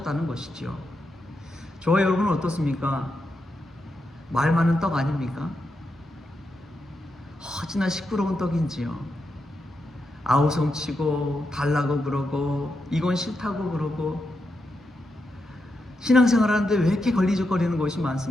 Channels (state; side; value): normal; both; correlation 0.85